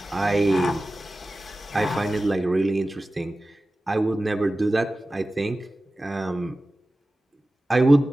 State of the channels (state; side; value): normal; both; correlation 0.96